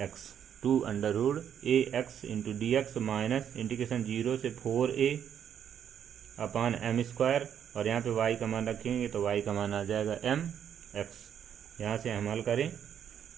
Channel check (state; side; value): quieter; left; 9.0 dB